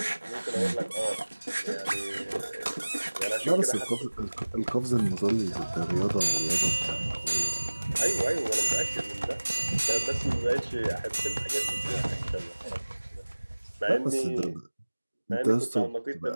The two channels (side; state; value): both; inverted; correlation -1.00